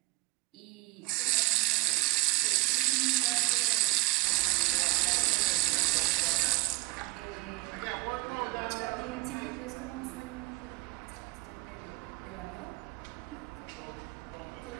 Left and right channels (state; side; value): quieter; left; 21.5 dB